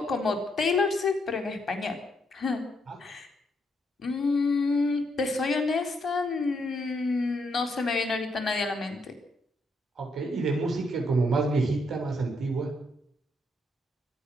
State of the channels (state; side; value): normal; both; correlation 0.76